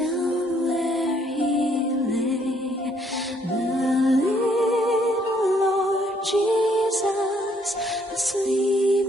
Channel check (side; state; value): both; normal; correlation 0.67